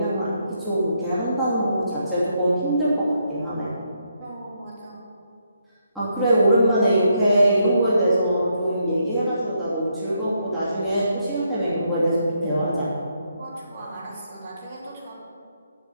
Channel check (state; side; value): inverted; both; correlation -0.77